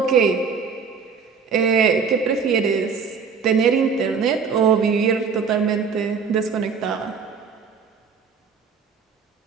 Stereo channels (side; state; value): left; quieter; 5.8 dB